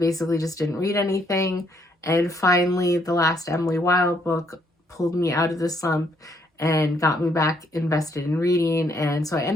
just didn't read anything, and finally the last Emily Wilde book pulled me out of the slump and got me back invested in reading. And so I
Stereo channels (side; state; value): both; normal; correlation 0.71